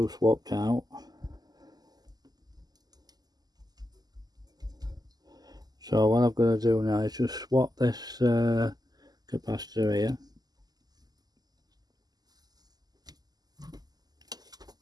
swapped out. So what I've got to do now is just swap this capacitor here.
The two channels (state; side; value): late; left; 0.20 ms